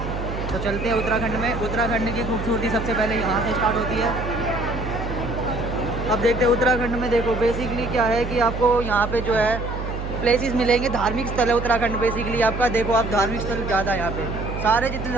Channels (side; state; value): right; noise; hum, 6 dB below the sound